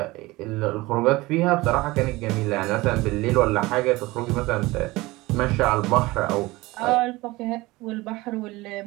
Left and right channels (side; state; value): left; quieter; 20.7 dB